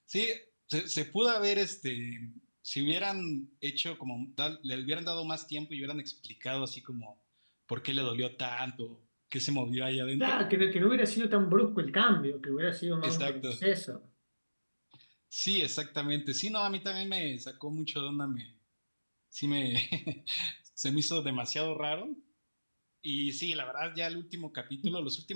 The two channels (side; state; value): both; inverted; correlation -1.00